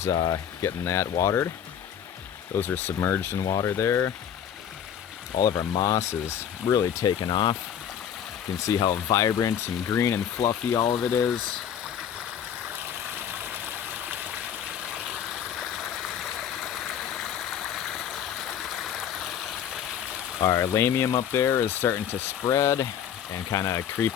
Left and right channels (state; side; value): quieter; right; 9.1 dB